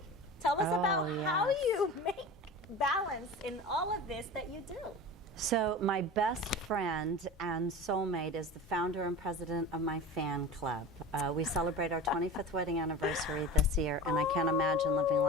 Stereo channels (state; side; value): normal; both; correlation 0.33